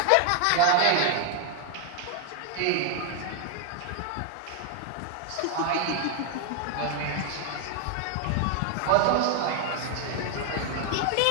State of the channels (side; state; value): both; different; correlation 0.01